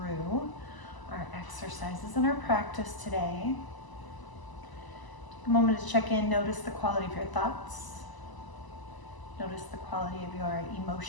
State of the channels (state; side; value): late; right; 1.0 ms